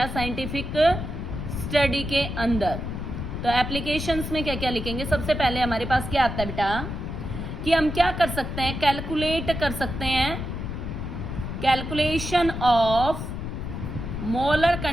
साइंटिफिक स्टडी के अंदर। तो एप्लीकेशंस में क्या क्या लिखेंगे, सबसे पहले हमारे पास क्या आता है बेटा, कि हम क्या कर सकते हैं, कैलकुलेट कर सकते हैं, calculation of molar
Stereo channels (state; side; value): noise; left; rumble, 5 dB below the sound